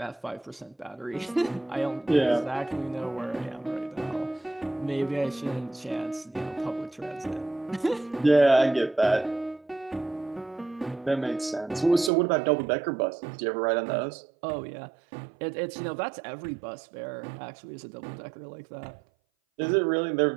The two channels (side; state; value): left; drops out; at 12.1 s